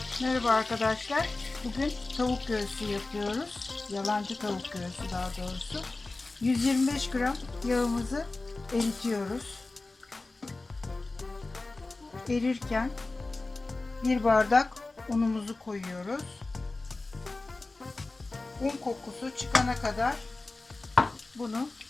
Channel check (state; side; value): quieter; right; 3.3 dB